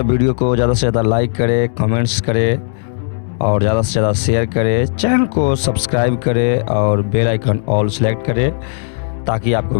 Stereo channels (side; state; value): right; silent; digital silence